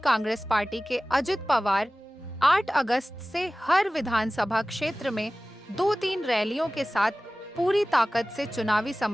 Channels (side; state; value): both; normal; correlation 0.97